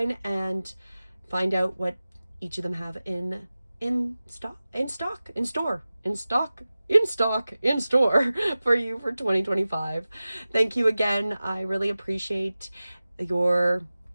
and find out what each of them have in store for you for 2025. Thank you again. I really appreciate your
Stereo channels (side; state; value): both; inverted; correlation -0.96